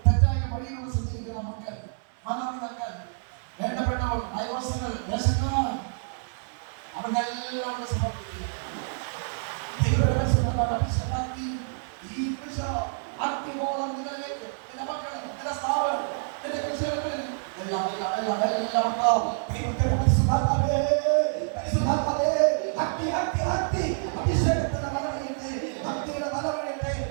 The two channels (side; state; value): left; silent; 60 dB below the other